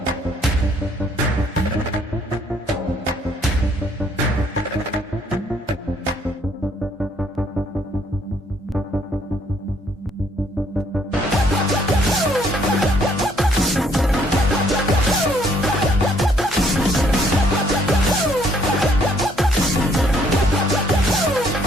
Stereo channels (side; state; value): both; normal; correlation 0.65